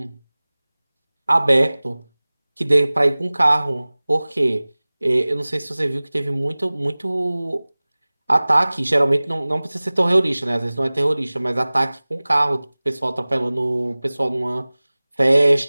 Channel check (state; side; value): inverted; both; correlation -0.99